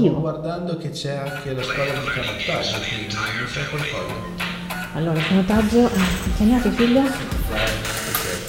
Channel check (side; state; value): both; identical; correlation 1.00